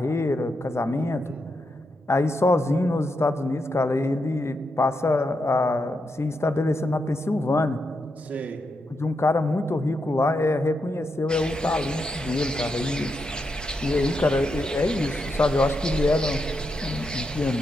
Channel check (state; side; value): normal; both; correlation 0.84